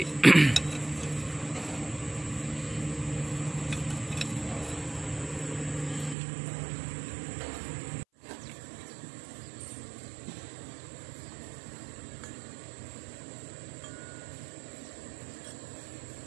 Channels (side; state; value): left; drops out; at 6.2 s